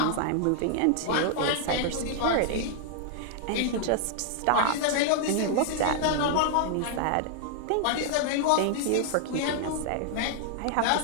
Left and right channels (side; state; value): both; different; correlation -0.01